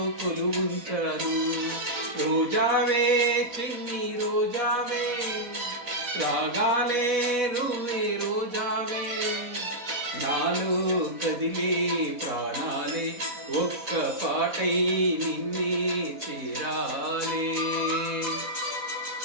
కొలువుంచాను, రోజావే చిన్ని రోజావే రాగాలే రువే రోజావే, నాలో కదిలే ప్రాణాలే ఒక్క పాటై నిన్నే చేరాలే.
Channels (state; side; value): late; left; 4.1 ms